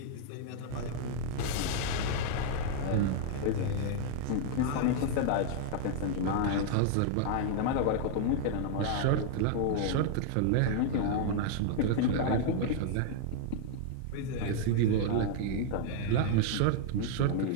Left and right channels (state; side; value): different; both; correlation -0.01